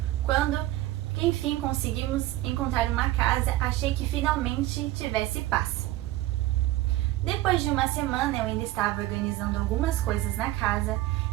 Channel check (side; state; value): left; quieter; 16.3 dB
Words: quando enfim conseguimos encontrar uma casa, achei que finalmente tivesse paz. Depois de uma semana, eu ainda estava organizando algumas coisas na casa.